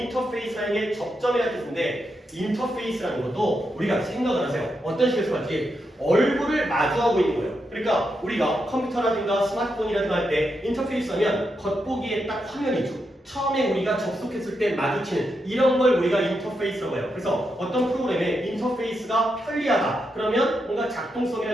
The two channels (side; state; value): both; normal; correlation 0.84